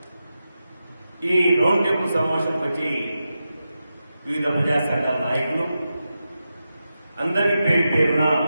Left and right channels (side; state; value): both; inverted; correlation -0.90